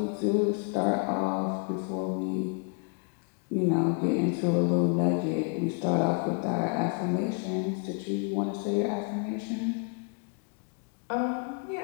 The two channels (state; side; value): quieter; right; 39.3 dB